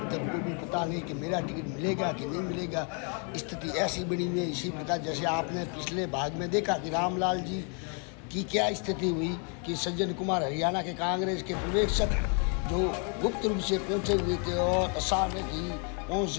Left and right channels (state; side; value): quieter; right; 38.5 dB